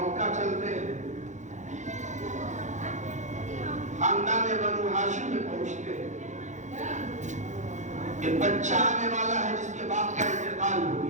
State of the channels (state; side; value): late; left; 0.35 ms